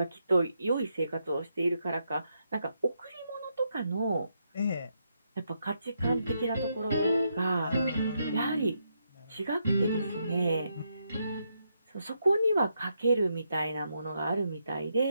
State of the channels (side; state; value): both; inverted; correlation -0.80